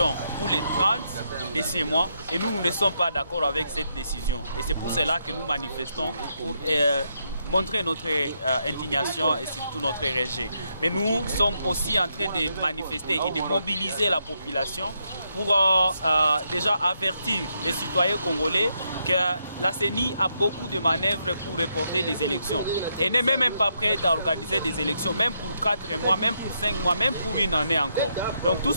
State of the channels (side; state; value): both; inverted; correlation -0.79